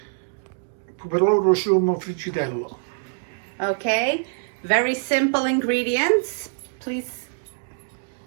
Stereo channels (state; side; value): silent; left; digital silence